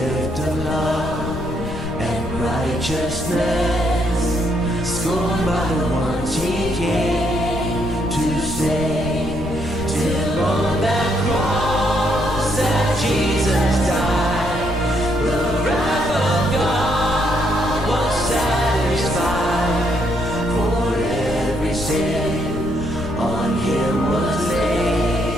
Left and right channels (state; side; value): noise; left; rumble, 9 dB below the sound